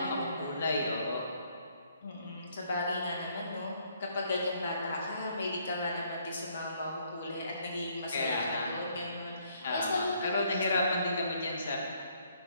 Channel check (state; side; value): inverted; both; correlation -0.67